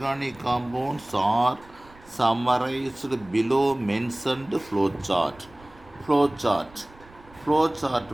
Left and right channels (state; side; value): noise; right; rumble, 24 dB below the sound